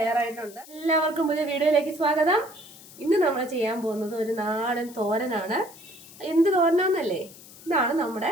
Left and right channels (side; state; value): left; noise; hiss, 19 dB below the sound